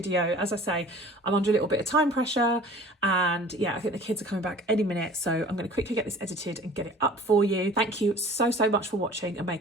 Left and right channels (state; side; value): normal; both; correlation 0.46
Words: As I say, I'm under a little bit of time pressure, and yeah, I think the kids are coming back any minute, so I'm going to quickly get this edited and get it up for you. Thank you so much for watching and